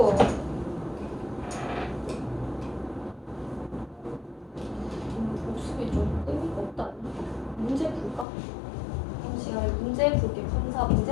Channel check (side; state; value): right; drops out; at 8.2 s